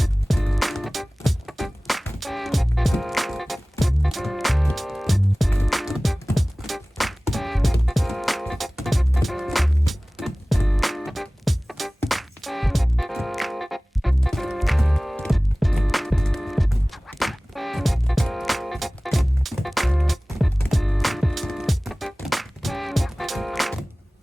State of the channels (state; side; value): normal; both; correlation 0.98